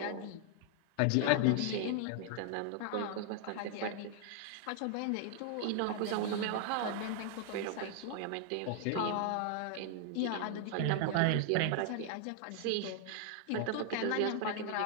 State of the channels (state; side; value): different; both; correlation 0.00